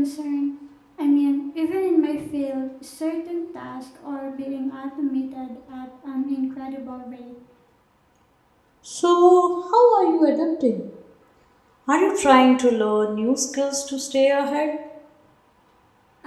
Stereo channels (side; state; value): both; identical; correlation 1.00